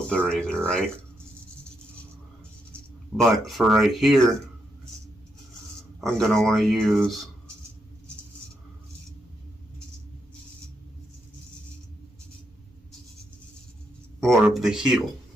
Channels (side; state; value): both; normal; correlation 0.80